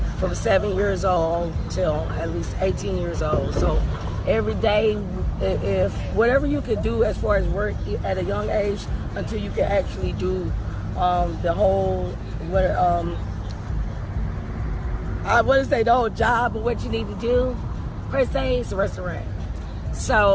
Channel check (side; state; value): both; identical; correlation 1.00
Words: from 7 years old till at least 18 years old. So every day, if whatever you could do as far as work at a young age until you can actually do the whole the whole job of what you need to do per se, it's a restaurant.